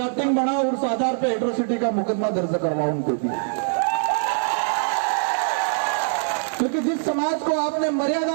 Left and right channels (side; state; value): left; silent; 63 dB below the other